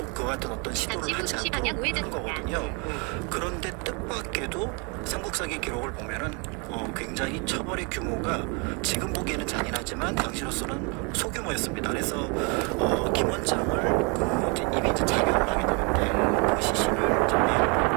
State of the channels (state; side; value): quieter; left; 32.9 dB